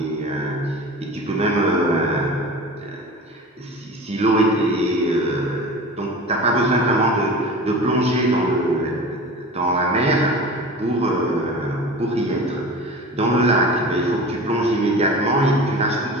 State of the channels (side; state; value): both; normal; correlation 0.35